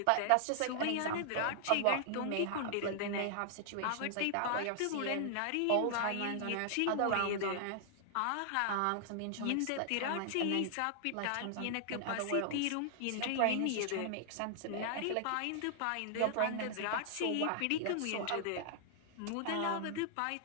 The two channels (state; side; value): different; both; correlation -0.01